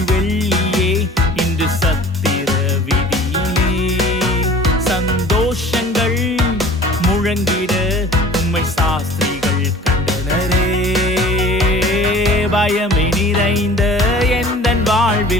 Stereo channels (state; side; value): normal; both; correlation 0.45